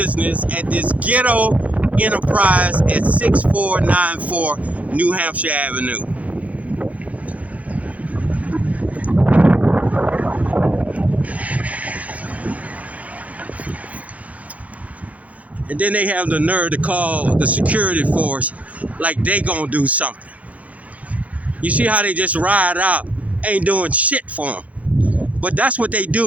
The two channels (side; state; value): left; late; 0.069 ms